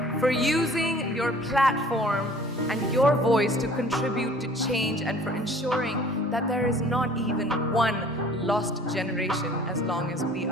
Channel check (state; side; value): normal; both; correlation 0.51